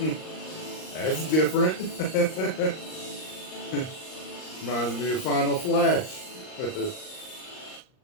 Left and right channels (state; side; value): late; right; 38 ms